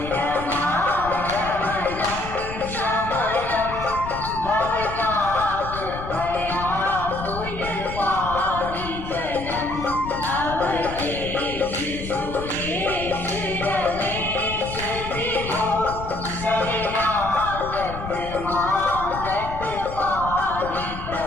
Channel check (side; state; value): left; noise; rumble, 10 dB below the sound